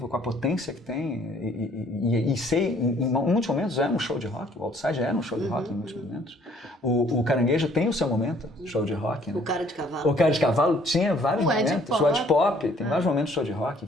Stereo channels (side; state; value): both; normal; correlation 0.60